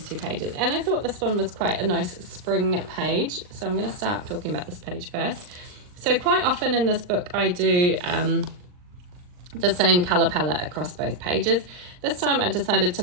2 pages, and I thought this one was quite a nice spring page, so I'm going to start talking about this page first. So quite often in this book I do the same colour palette across both pages. This time I decided to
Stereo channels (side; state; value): left; late; 39 ms